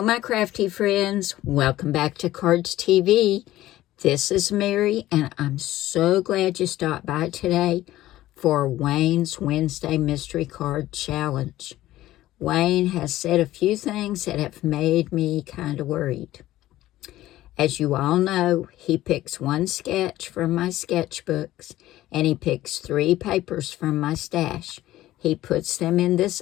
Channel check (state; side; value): quieter; right; 15.2 dB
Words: my crafty friends, welcome back to Cardz TV. This is Mary, and I'm so glad you stopped by today for Wayne's Wednesday Mystery Card Challenge. Wayne has said a few things that have made me kind of worried. As you all know, he picks one sketch from my sketchbooks, and he picks 3 papers from my stash. He puts them in this